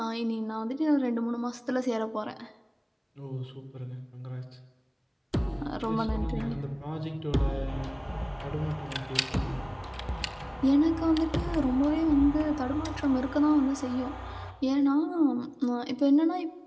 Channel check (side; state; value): both; identical; correlation 1.00